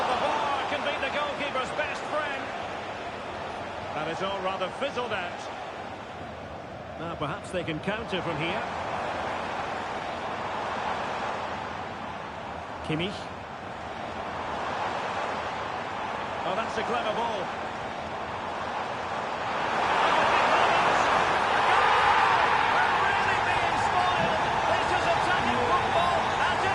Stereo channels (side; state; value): both; identical; correlation 1.00